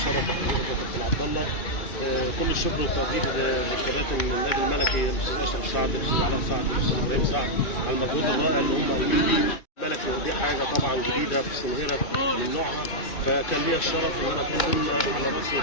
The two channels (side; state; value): right; late; 2.5 ms